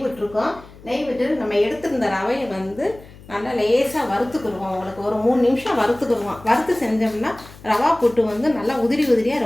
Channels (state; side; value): noise; left; hum, 20 dB below the sound